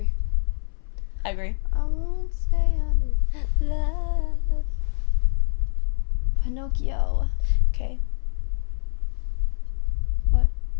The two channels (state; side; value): silent; right; 62 dB below the other